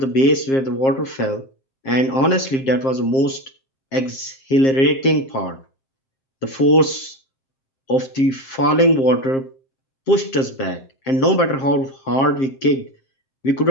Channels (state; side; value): late; right; 7.5 ms